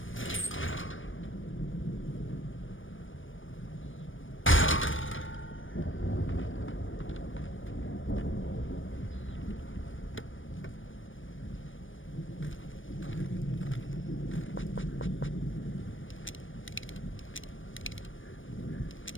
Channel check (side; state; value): right; late; 0.57 ms